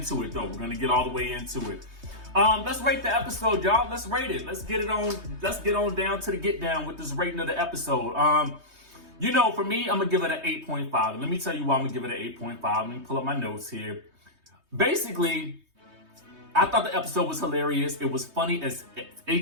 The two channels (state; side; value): late; left; 3.2 ms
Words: it though. We're going to get all the way into it. Let's rate the episode, y'all. Let's rate it. Let's get on down to the get down with this rating of the episode. For me, I'm going to give it an 8.5. And let me tell you why I'm going to give it an 8.5. Let me pull up my notes here. Basically, I thought the episode was hilarious. It was funny as